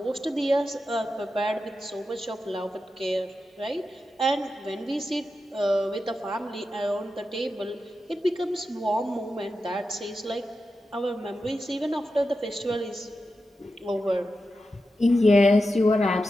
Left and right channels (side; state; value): both; normal; correlation 0.90